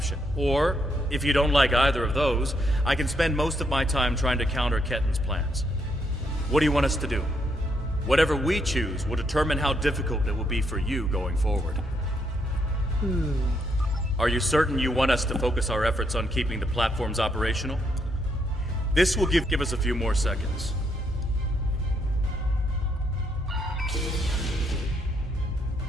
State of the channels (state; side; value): normal; both; correlation 0.76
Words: or, if you don't like either of those, I can spend most of my time trying to counter Ketten's plans. What do you want us to do? Whatever we choose will determine how difficult it will be for you going forward. Are you certain you want us to focus our efforts on keeping the platforms operational? This will give us a few more seconds.